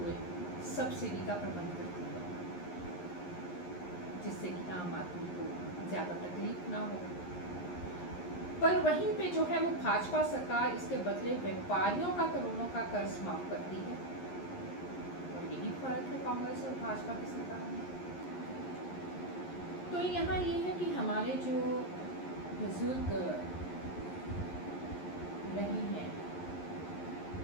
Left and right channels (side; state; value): right; late; 11 ms